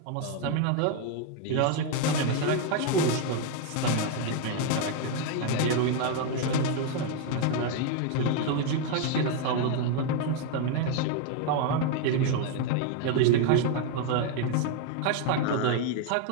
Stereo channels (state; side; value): different; both; correlation 0.01